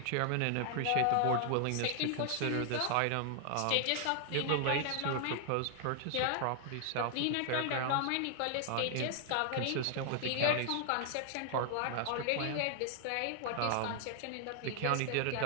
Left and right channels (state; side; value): different; both; correlation 0.00